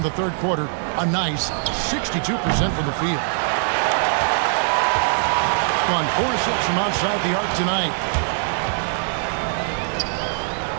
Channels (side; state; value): left; silent; digital silence